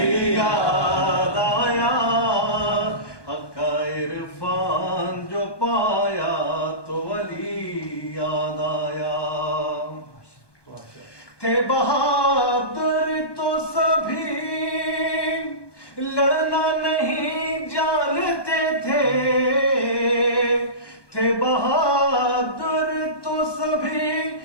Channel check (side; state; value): right; late; 1.2 ms